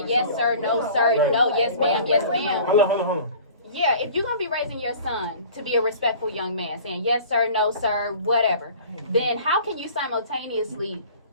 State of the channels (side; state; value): both; inverted; correlation -0.44